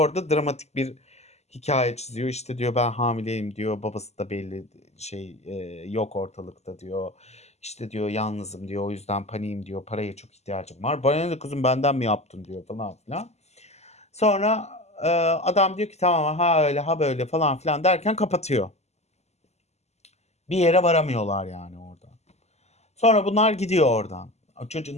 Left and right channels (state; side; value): late; right; 0.32 ms